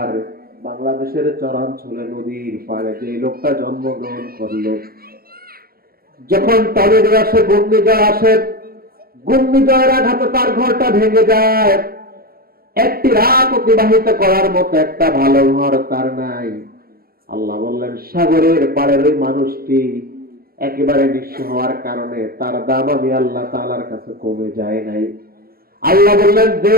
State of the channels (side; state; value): left; late; 0.44 ms